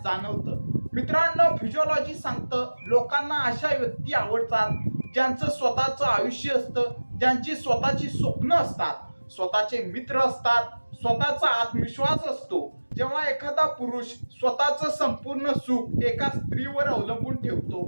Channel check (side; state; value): both; inverted; correlation -1.00